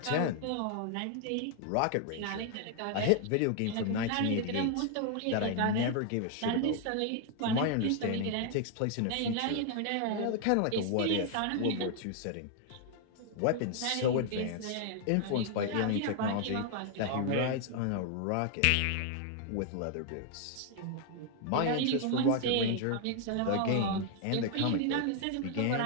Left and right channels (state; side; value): different; both; correlation 0.00